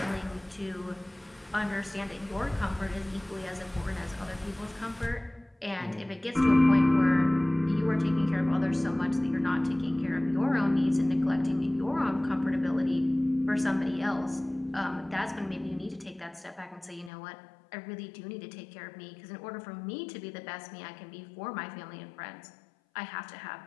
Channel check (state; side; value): drops out; right; at 17.1 s